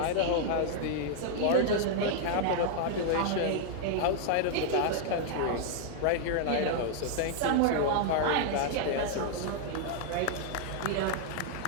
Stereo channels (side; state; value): both; different; correlation -0.01